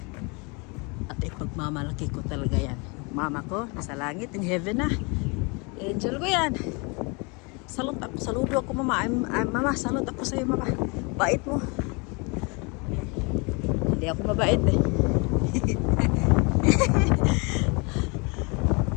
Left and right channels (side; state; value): right; quieter; 30.3 dB